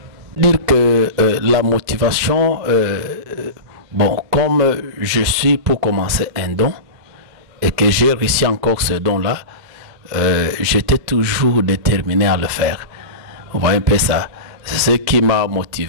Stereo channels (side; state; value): left; late; 2.1 ms